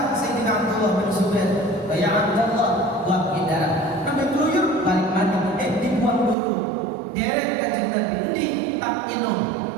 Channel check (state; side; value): drops out; left; at 6.4 s